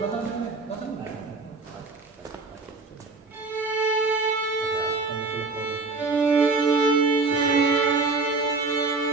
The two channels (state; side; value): quieter; left; 3.8 dB